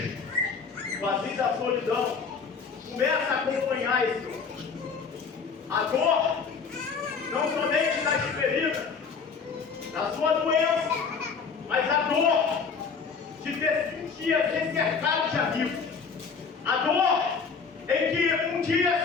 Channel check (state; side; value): quieter; right; 5.5 dB